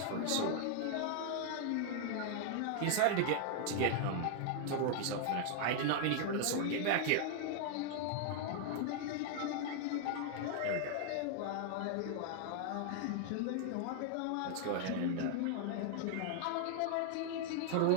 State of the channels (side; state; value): both; different; correlation 0.00